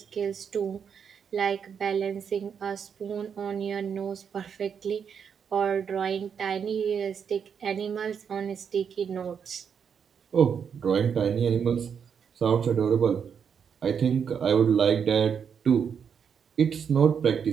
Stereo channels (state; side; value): quieter; left; 7.2 dB